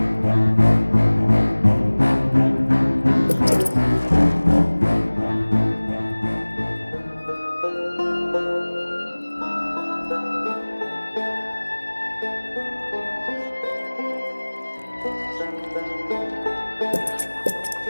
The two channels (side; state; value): both; inverted; correlation -1.00